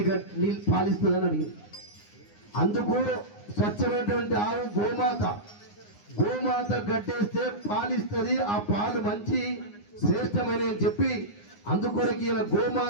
నీళ్ళు పాలిస్తుందని అడిగింది. అందుకు స్వచ్ఛమైనటువంటి ఆవు గోమాత గడ్డేస్తే పాలిస్తుంది. ఆ పాలు మంచి శ్రేష్టమైన అని చెప్పి అందుకొరకు ఇలా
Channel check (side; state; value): right; late; 9.7 ms